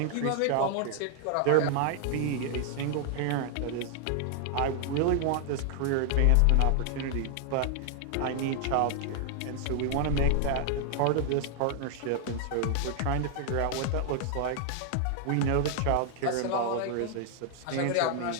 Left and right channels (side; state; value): both; different; correlation 0.00